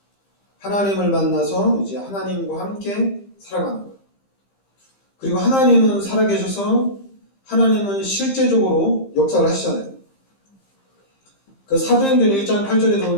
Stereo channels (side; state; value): right; late; 15 ms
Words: 하나님을 만나서 이제 하나님과 함께 살아가는 거예요. 그리고 하나님은 살아계셔서 하나님은 실제적으로 역사를 하시잖아요. 그 사도행전 1장 8절에